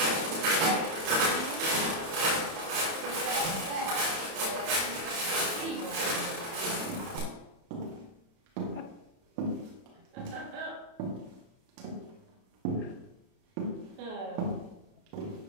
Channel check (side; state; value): left; late; 31 ms